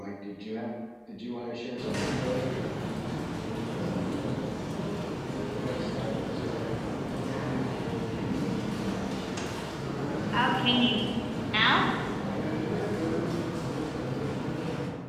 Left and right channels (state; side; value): identical; both; correlation 1.00